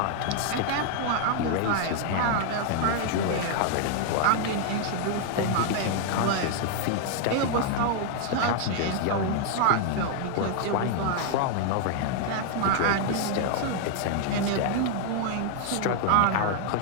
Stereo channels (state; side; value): different; both; correlation 0.00